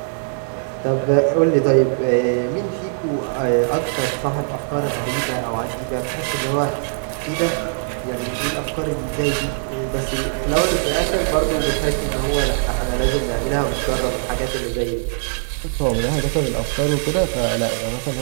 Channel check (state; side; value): silent; left; digital silence